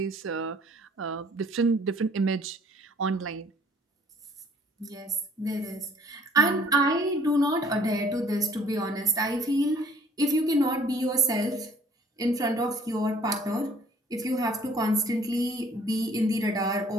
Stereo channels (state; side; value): normal; both; correlation 0.58